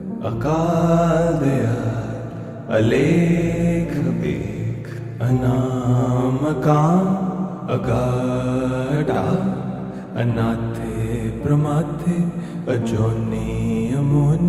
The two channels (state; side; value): identical; both; correlation 1.00